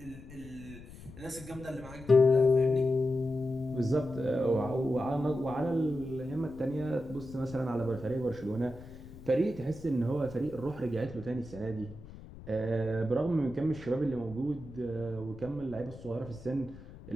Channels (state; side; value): noise; left; rumble, 16 dB below the sound